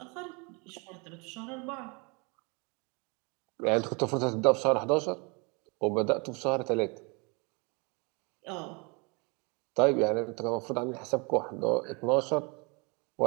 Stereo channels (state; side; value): quieter; left; 30.7 dB